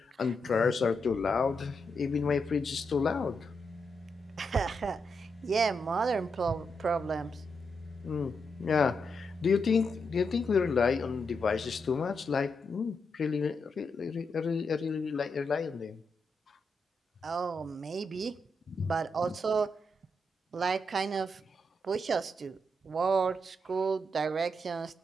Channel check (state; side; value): normal; both; correlation 0.83